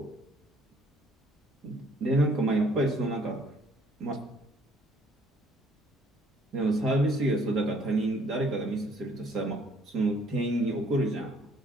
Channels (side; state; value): both; normal; correlation 0.61